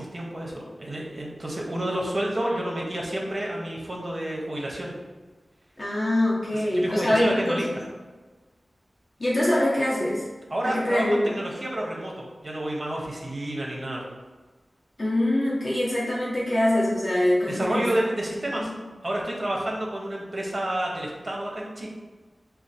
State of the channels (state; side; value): normal; both; correlation 0.97